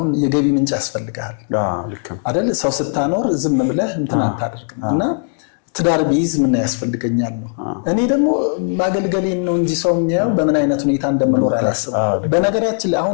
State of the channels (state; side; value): silent; right; 67 dB below the other